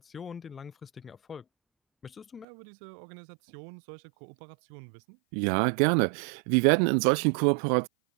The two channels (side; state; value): left; drops out; at 2.5 s